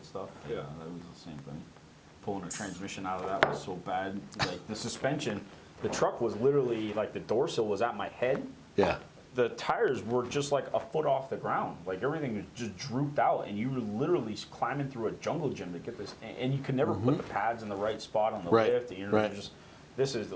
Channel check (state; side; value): identical; both; correlation 1.00